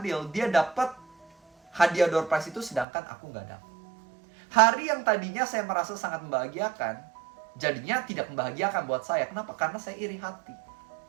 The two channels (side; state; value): left; drops out; at 2.9 s